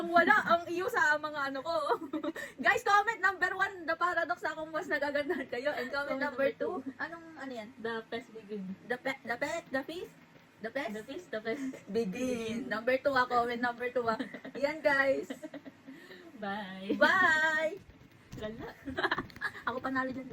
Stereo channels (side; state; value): both; identical; correlation 1.00